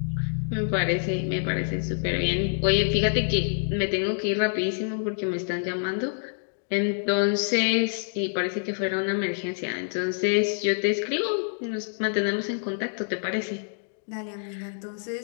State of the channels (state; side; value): silent; right; digital silence